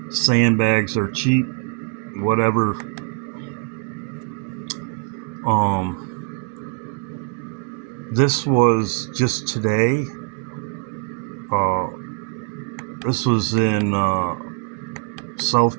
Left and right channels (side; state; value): left; quieter; 37.4 dB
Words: Sandbags are cheap, whatever. This was just today. This was in